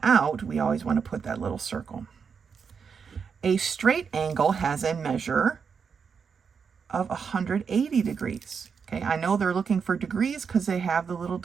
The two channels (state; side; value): quieter; left; 6.2 dB